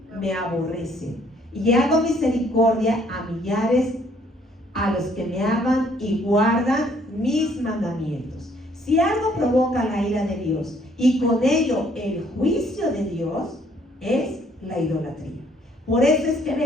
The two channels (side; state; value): both; normal; correlation 0.64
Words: me aborrecen. Y hago misericordia a millares, a los que me aman y guardan mis mandamientos. Si algo provoca la ira de Dios y con ello el juicio de Dios, es la idolatría. Por eso es que